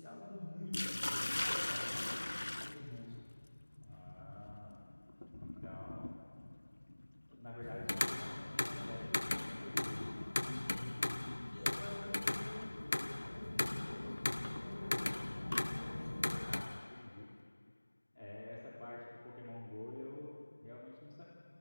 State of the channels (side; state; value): both; inverted; correlation -1.00